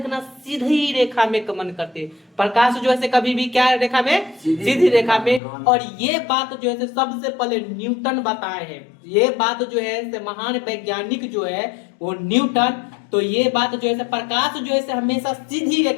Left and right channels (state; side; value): drops out; right; at 5.4 s